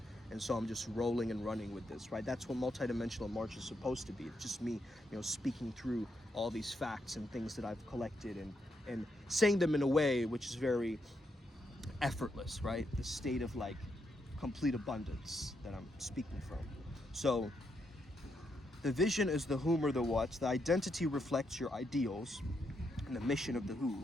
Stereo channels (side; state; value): both; normal; correlation 0.80